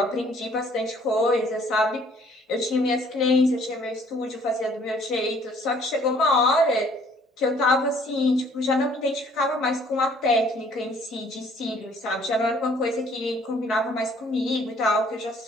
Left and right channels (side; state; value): both; normal; correlation 0.59